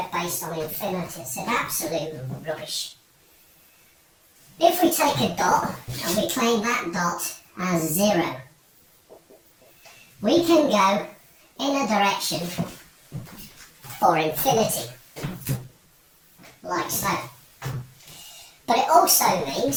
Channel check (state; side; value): identical; both; correlation 1.00